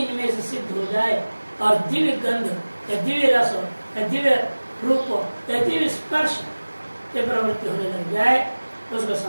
से सिद्ध हो जाए और दिव्य गंध या दिव्य रस या दिव्य रूप या दिव्य स्पर्श के प्रवृत्ति होने लग जाए उसको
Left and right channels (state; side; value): inverted; both; correlation -1.00